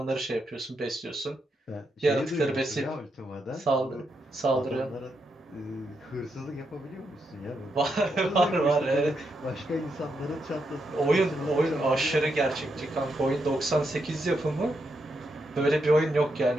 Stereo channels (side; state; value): both; normal; correlation 0.82